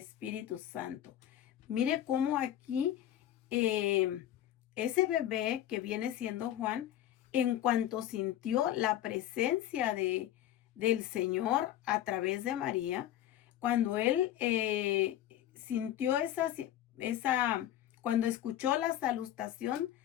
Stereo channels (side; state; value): right; quieter; 12.2 dB